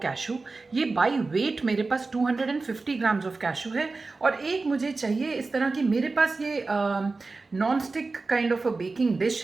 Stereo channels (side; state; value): left; quieter; 3.8 dB